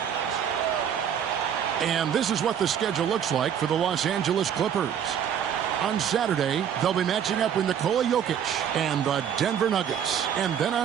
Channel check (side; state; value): left; quieter; 8.7 dB